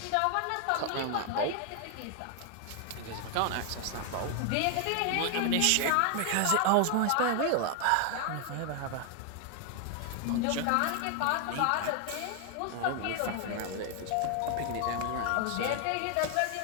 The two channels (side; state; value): both; different; correlation 0.00